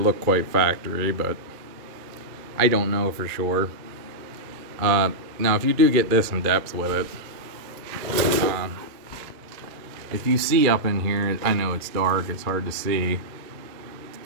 quite factory, but I don't know for sure. Now, if you do get this in depth with it, if you see up in here, I know it's dark, it's hard to see.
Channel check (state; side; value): late; left; 2.3 ms